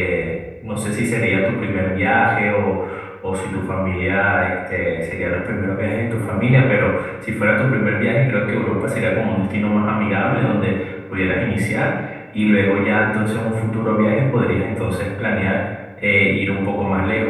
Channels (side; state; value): both; identical; correlation 1.00